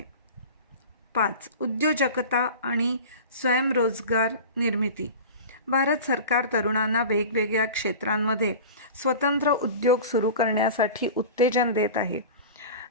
5. उद्योजकता आणि स्वयंरोजगार निर्मिती. भारत सरकार तरुणांना वेगवेगळ्या क्षेत्रांमध्ये स्वतंत्र उद्योग सुरू करण्यासाठी उत्तेजन देत आहे.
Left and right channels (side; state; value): both; inverted; correlation -0.35